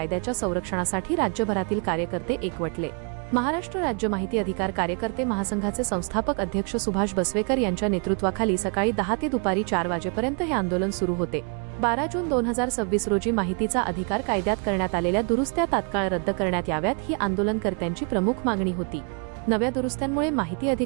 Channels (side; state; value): left; quieter; 39.0 dB